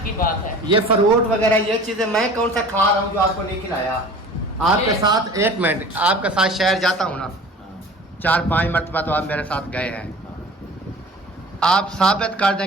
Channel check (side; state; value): both; normal; correlation 0.42